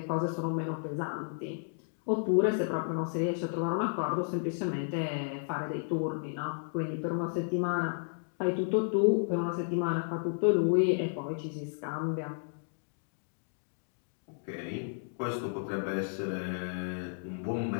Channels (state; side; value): silent; right; digital silence